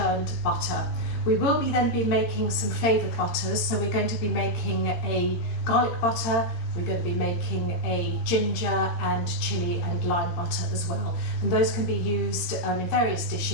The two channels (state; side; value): late; right; 18 ms